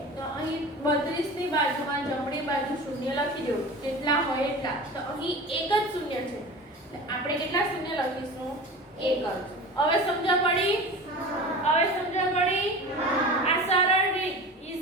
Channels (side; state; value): both; normal; correlation 0.34